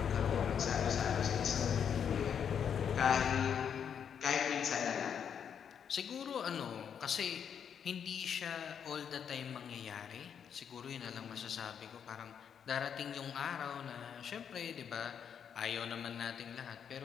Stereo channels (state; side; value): quieter; right; 7.8 dB